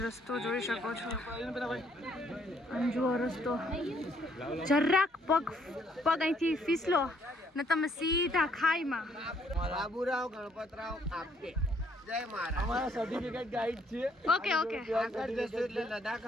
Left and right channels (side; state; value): both; normal; correlation 0.67